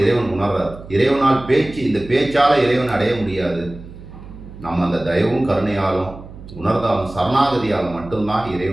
இறைவன் உணர்றார். இறைவனால் இந்த பேச்சால் இறைவன் அடைய முடியாது. நம்ம அந்த தயவும் கருணையாலும் உணர்ந்தாலும் சரணாகதியால் மட்டும்தான்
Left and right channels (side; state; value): right; noise; hum, 16 dB below the sound